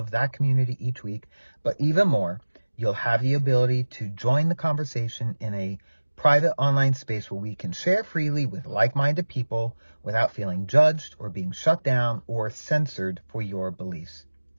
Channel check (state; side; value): inverted; both; correlation -1.00